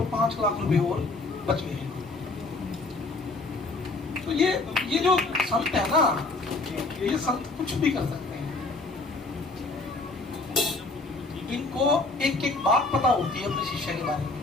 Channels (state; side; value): quieter; right; 3.3 dB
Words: 5 लाख रुपए और बच गए। तो ये जो संत है ना, ये संत कुछ भी कर सकते हैं। इनको एक एक बात पता होती है अपने शिष्य के बारे में।